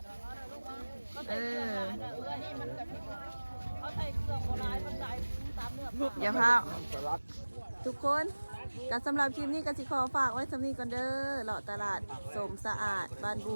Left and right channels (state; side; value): inverted; both; correlation -1.00